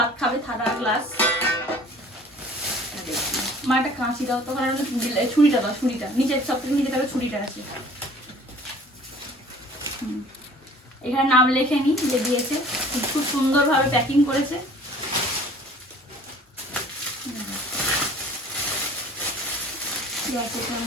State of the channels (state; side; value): normal; both; correlation 0.50